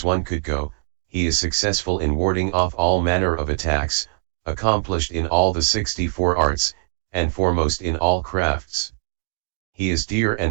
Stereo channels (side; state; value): left; silent; digital silence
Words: one could go, he is successful in warding off all manner of attacks, accomplished in all the 64 arts, and foremost in all crafts. He is dear